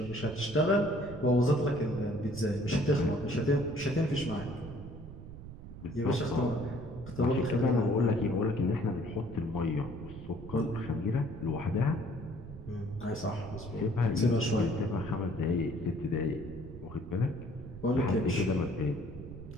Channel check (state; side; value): noise; right; rumble, 13 dB below the sound